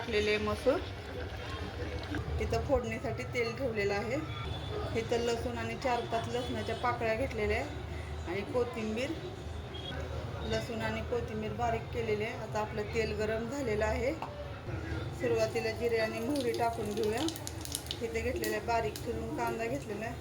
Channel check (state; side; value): identical; both; correlation 1.00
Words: आहे मसूर. इथं फोडणीसाठी तेल ठेवलेलं आहे. इथं लसूण आणि 4-5 लसणाच्या पाकळ्या घेतलेल्या आहे आणि कोथिंबीर. लसूण आणि कोथिंबीर बारीक केलेली आहे. आता आपलं तेल गरम झालेलं आहे. सुरुवातीला जिरे आणि मोहरी टाकून घेऊया. इथे घेतलेला आहे बारीक चिरून कांदा घेतलेला